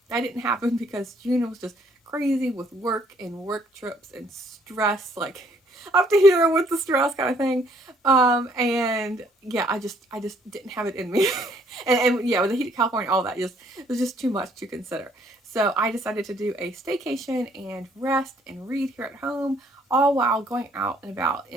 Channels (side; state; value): both; normal; correlation 0.65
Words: that didn't happen because June was just crazy with work and work trips and stress, like up to here with the stress kind of thing. And yeah, I just didn't have it in me. and yeah, with the heat of California, all that just it was just too much to consider. So I decided to do a staycation and rest and read here at home, all while going out and about